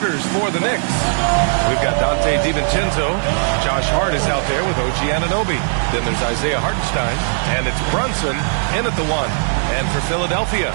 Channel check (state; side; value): silent; left; digital silence